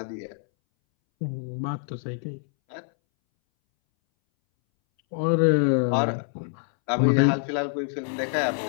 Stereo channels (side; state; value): right; silent; 61 dB below the other